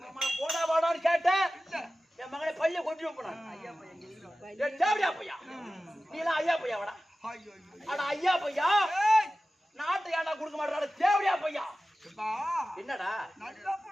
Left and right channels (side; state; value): both; normal; correlation 0.95